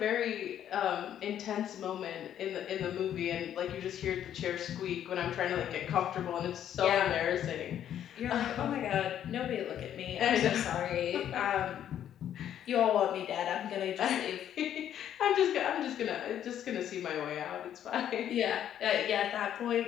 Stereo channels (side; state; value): right; quieter; 10.4 dB